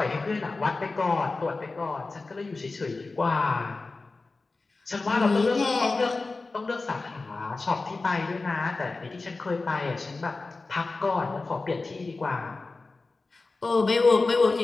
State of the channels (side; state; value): right; quieter; 3.6 dB